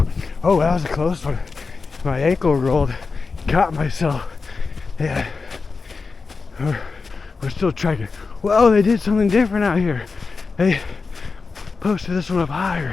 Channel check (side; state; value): right; quieter; 4.5 dB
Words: Oh, that was a close one. My ankle rolled, caught myself. Yeah, we're still trekking. Whoa, they did something different out here. They posted this one up higher.